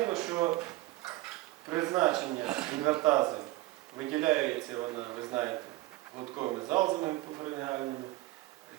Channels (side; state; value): left; quieter; 18.1 dB